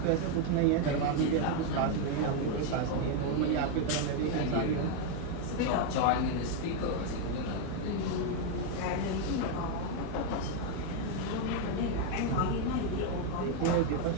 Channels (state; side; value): different; both; correlation 0.01